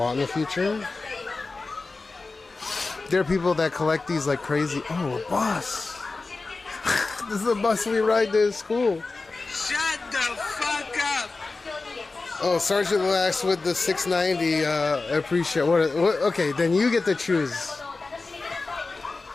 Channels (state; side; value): quieter; right; 3.7 dB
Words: in the future. There are people that collect these like crazy. Oh, a bus. This is a bus we ride to school. Shut the fuck up! Oh, Sergeant Lax with the 690. I appreciate what? Okay, then you get to choose.